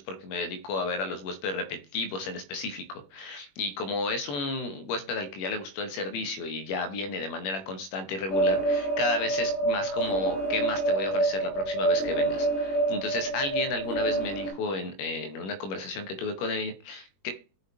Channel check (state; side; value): late; right; 21 ms